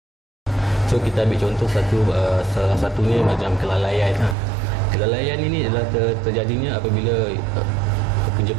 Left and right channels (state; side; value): drops out; left; at 4.4 s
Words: So kita ambil contoh salah satunya macam kelalaian. Kelalaian ini adalah terjadinya apabila